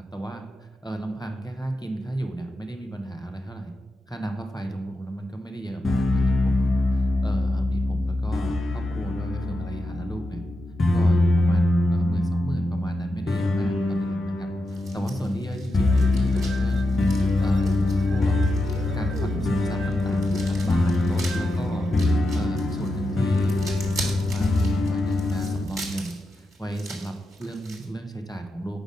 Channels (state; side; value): normal; both; correlation 0.88